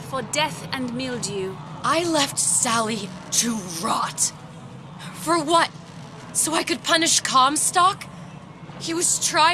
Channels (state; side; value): identical; both; correlation 1.00